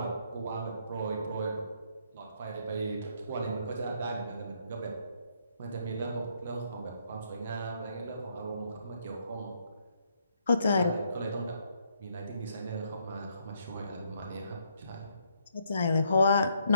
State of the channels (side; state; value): both; inverted; correlation -0.72